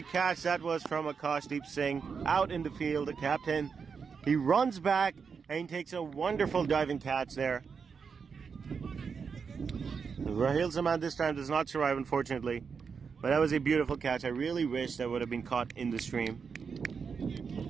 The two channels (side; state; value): left; quieter; 5.8 dB